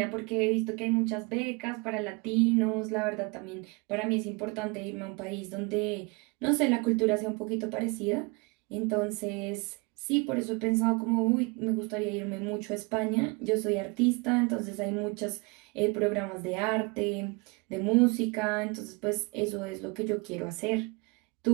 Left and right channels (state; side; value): quieter; left; 29.1 dB